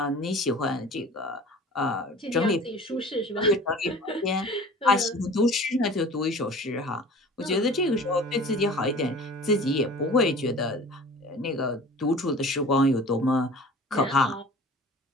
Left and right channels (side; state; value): both; normal; correlation 0.43